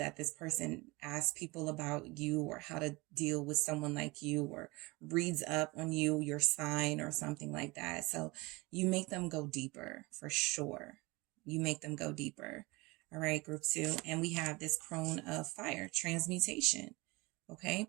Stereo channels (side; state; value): left; quieter; 23.9 dB